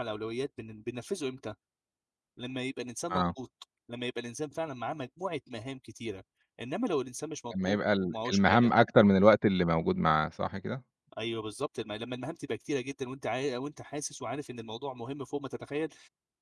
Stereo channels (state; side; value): identical; both; correlation 1.00